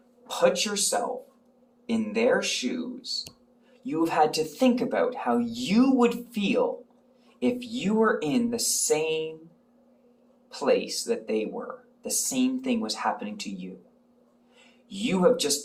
put yourself in their shoes. You have had to think about how you would feel if you were in the same place that they were. The same thing was happening to you. You have just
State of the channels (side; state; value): both; identical; correlation 1.00